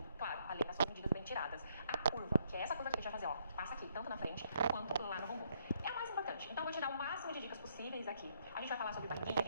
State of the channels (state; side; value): inverted; both; correlation -0.71